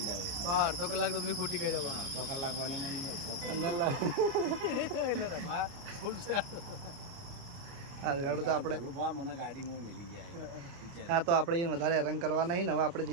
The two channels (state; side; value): late; left; 29 ms